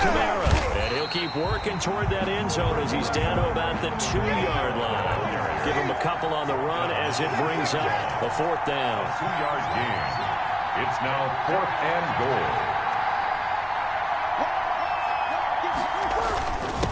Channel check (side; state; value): both; identical; correlation 1.00